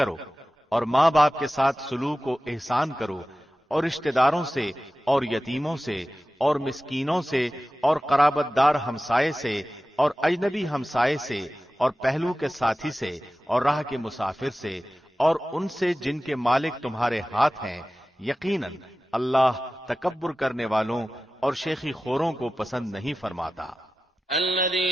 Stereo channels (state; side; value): normal; both; correlation 0.95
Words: اور ماں باپ کے ساتھ سلوک و احسان کرو، اور رشتہ داروں سے اور یتیموں سے اور مسکینوں سے اور قرابت دار ہمسائے سے اور اجنبی ہمسائے سے اور پہلو کے ساتھی سے اور راہ کے مسافر سے اور ان سے جن کے مالک تمہارے ہاتھ ہیں. یقیناً اللہ تکبر کرنے والوں اور شیخی خوروں کو پسند نہیں فرماتا.